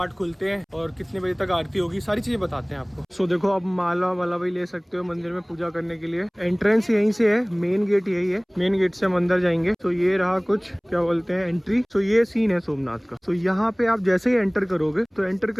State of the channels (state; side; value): identical; both; correlation 1.00